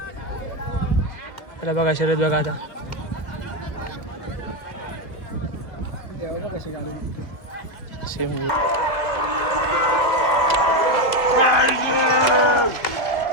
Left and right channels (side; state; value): right; late; 2.3 ms